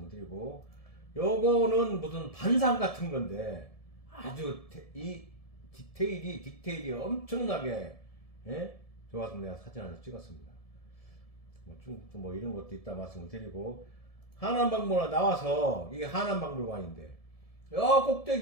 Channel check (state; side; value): late; right; 1.7 ms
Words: 드리고, 요거는 무슨 반상 같은 건데 아주 이 디테일이 엄청나게 좋아서 내가 사진 하나 찍었습니다. 중국도 뭐 이런 것도 있다 말씀을 드리고, 하남박물관 나와서 이게 하남박물관인데 여